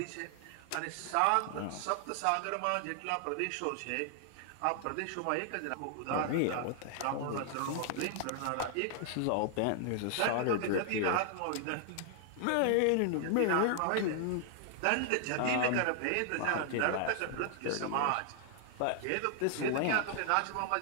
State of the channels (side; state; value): both; different; correlation 0.00